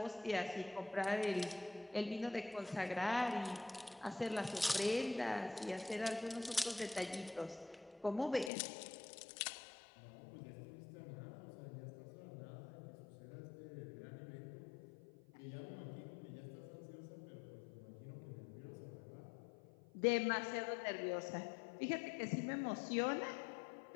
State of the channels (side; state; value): right; drops out; at 8.5 s